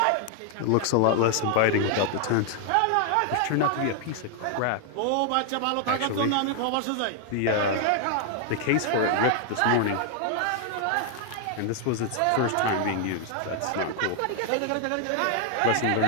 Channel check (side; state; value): both; different; correlation 0.00